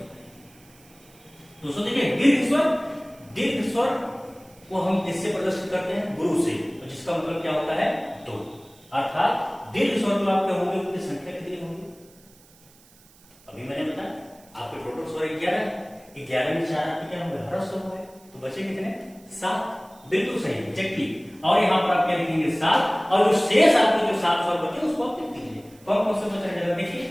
दोस्तों देखिए, दीर्घ स्वर को हम किससे प्रदर्शित करते हैं? गुरु से, जिसका मतलब क्या होता है? 2। अर्थात दीर्घ स्वर जो आपके होंगे उनकी संख्या कितनी होगी? अभी मैंने बताया आपके टोटल स्वर 11 में 4 आपके क्या होंगे? हर्ष स्वर होंगे, तो बचे कितने? 7। बिल्कुल सही, एग्जैक्टली। और यहाँ पर आप क्या लिखेंगे? 7। और जो शेष आपके जो 7 स्वर बचे उसको आप लिख दीजिए। कौन कौन से बच रहे हैं? देखिए,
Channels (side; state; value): right; noise; hiss, 27 dB below the sound